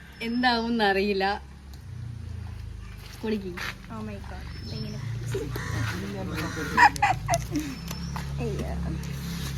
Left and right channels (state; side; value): identical; both; correlation 1.00